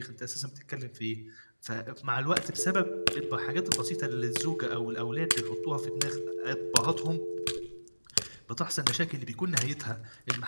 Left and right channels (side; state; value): both; inverted; correlation -1.00